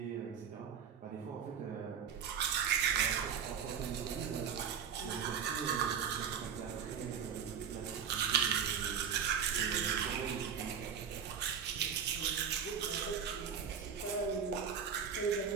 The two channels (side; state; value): left; quieter; 7.6 dB